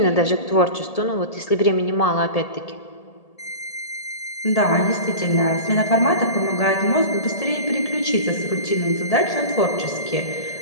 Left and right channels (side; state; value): right; late; 1.8 ms